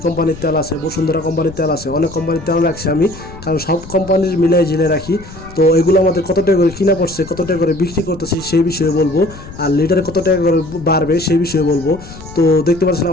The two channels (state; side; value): noise; left; rumble, 16 dB below the sound